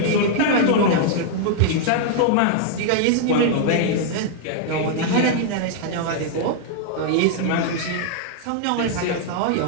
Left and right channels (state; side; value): different; both; correlation -0.01